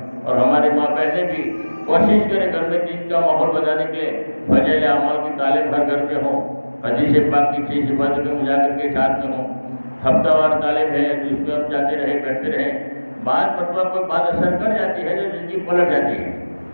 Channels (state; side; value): inverted; both; correlation -1.00